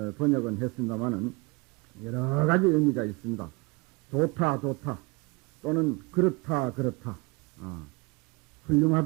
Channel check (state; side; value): quieter; left; 27.3 dB